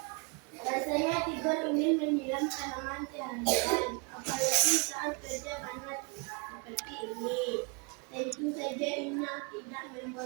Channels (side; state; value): left; quieter; 33.3 dB